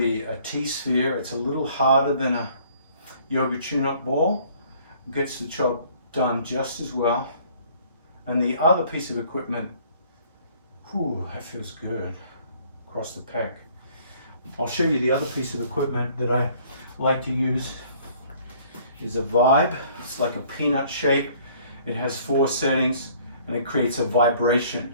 a T-sphere. It's a little harder than a yoga tune-up ball. It gets the job done just as well. And the other piece of equipment, whew, that feels good across the pec. I'll show you the other piece of equipment that I like to use. Is a Vibe. It's like a peanut shape. It has 4 settings and it creates a vibration.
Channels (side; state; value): both; inverted; correlation -0.57